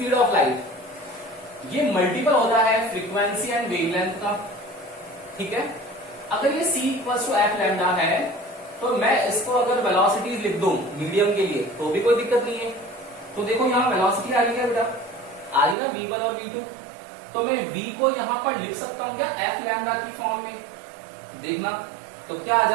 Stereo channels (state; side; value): drops out; left; at 15.8 s